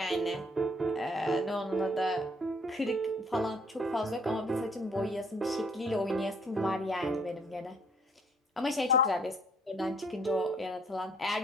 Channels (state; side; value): normal; both; correlation 0.63